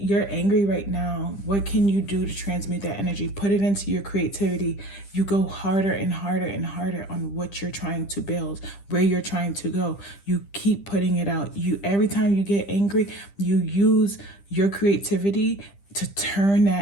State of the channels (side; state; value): right; late; 10 ms